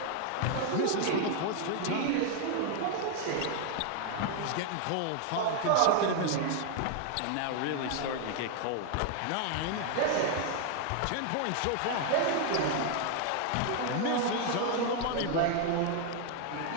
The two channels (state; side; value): different; both; correlation 0.00